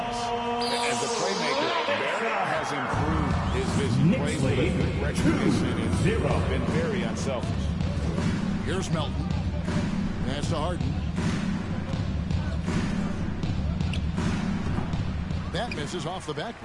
As a playmaker, Barrett has improved his vision. Plays with a good recognition and been very unselfish. Here's Melton. Pass to Harden. That misses off the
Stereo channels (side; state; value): both; identical; correlation 1.00